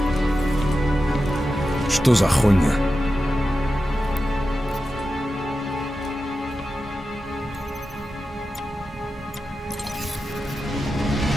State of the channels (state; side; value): normal; both; correlation 0.92